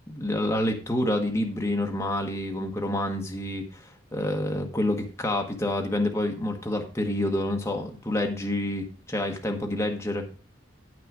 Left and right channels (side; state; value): both; normal; correlation 0.72